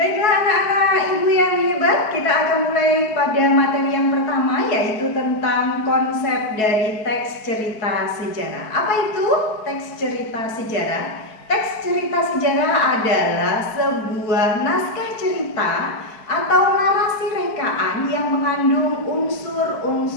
anak-anak ibu yang hebat, kita akan mulai pada materi yang pertama, yaitu tentang konsep dari teks cerita sejarah. Apa itu teks cerita sejarah? Teks cerita sejarah adalah sebuah naskah cerita atau narasi rekaan yang mengandung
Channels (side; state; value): right; late; 4.6 ms